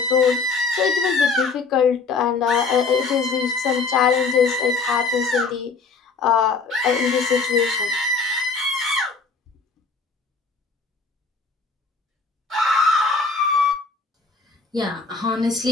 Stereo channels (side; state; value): right; quieter; 4.4 dB